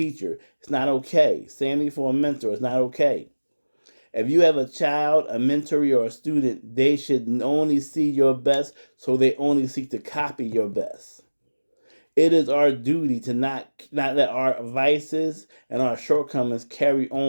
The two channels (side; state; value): both; inverted; correlation -1.00